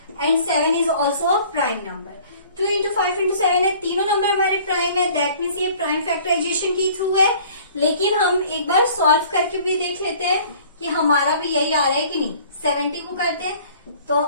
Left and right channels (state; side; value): inverted; both; correlation -0.52